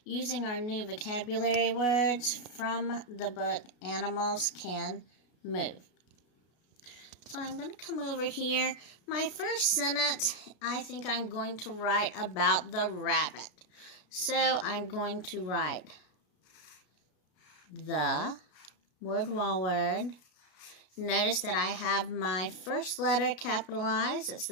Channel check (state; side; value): late; right; 33 ms